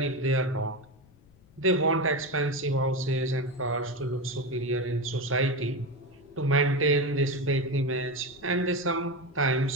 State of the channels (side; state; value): left; noise; rumble, 27 dB below the sound